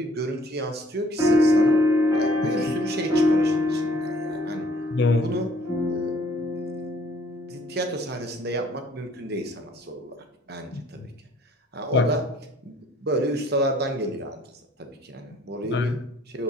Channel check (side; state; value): both; normal; correlation 0.59